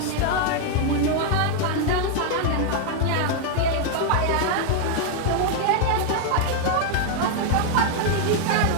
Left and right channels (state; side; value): different; both; correlation 0.00